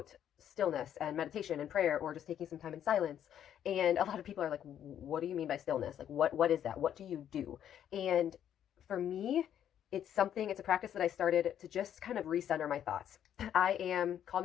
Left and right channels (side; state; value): right; quieter; 10.0 dB